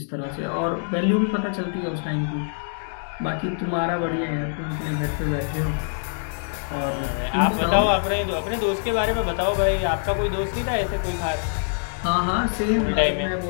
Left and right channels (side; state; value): right; silent; digital silence